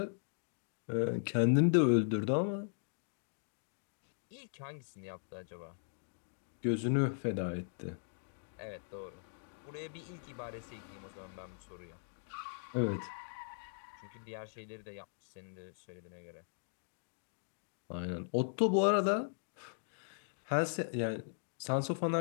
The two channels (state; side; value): silent; right; digital silence